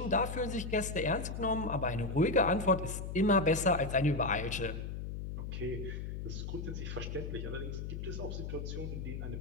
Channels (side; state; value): left; noise; hum, 6 dB below the sound